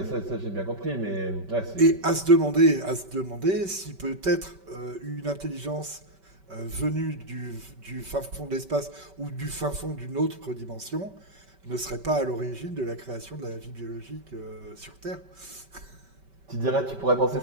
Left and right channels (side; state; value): left; late; 5.2 ms